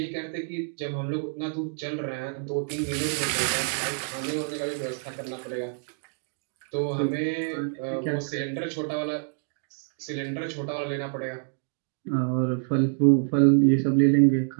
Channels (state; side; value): silent; left; 60 dB below the other